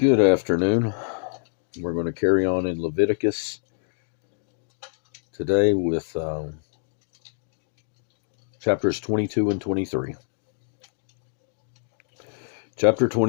afternoon. We're going to carry on in Leviticus today with chapters 22 and 23. Chapter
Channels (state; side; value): silent; right; digital silence